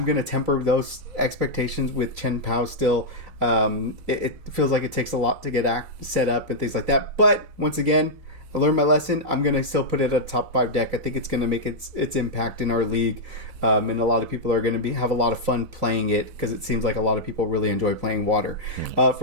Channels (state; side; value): late; left; 4.0 ms